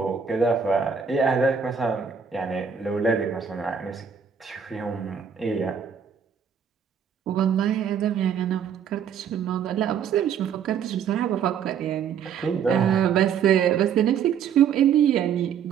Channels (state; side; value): quieter; left; 7.4 dB